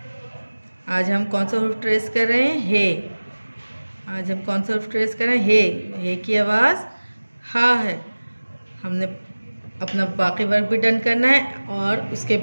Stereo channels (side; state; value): both; inverted; correlation -1.00